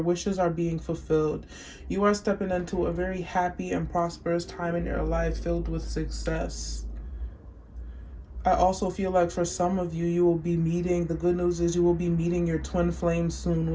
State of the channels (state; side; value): identical; both; correlation 1.00